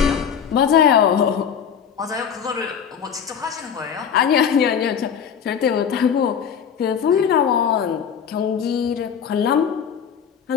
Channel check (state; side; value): quieter; right; 7.7 dB